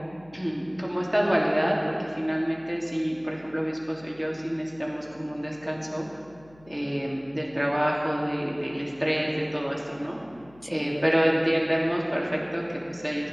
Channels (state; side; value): noise; left; hum, 26 dB below the sound